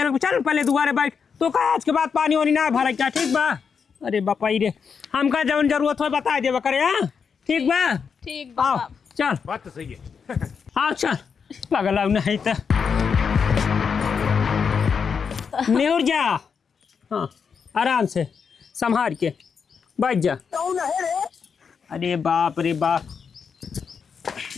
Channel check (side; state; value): right; quieter; 6.2 dB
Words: चल पहले दुआरे बैठ तो का आज के बाद पानी वानी ना भरा क्या ठीक बा। अरे बपाई रे हमका जवन जरूरत हो बता देवा करे हाँ ठीक बा ठीक बा चल बात तो सही है। हाँ चल पगला नहीं तो न्यूर जा हाँ आराम से संभाल के बैठ जा। अरे बाप रे बाप